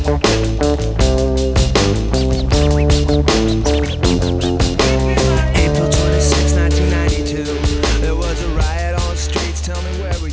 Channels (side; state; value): both; identical; correlation 1.00